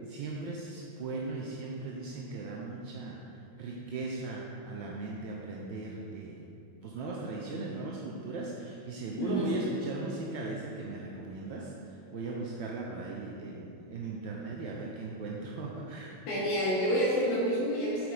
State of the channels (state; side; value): late; right; 22 ms